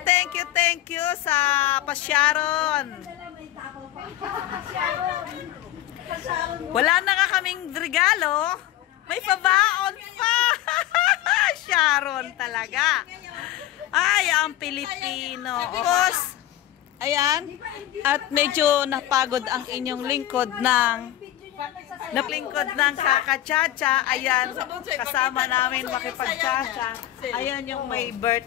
you sa pasyaron. Wala na nga kaming regalo. May pabaon pa. Sharon talaga. Ay, ang Pilipino. Tapos, ayan. At medyo napagod ang inyong lingkod ng kakachacha. Ayan, kasama namin makipagchacha. Ayan yung may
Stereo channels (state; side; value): quieter; right; 13.8 dB